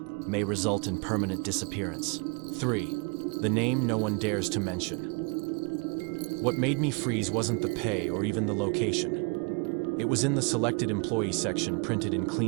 may result in permanent disappearance. 3. The name no one dares to mention. What made me freeze wasn't the pay or even the location. It was in the selected employee section, printed in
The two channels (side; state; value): left; quieter; 31.7 dB